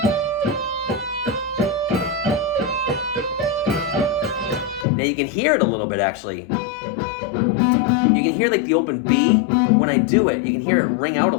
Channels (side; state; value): right; drops out; at 4.9 s